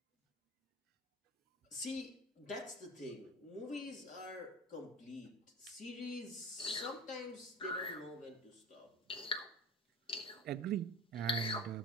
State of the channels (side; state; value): both; normal; correlation 0.33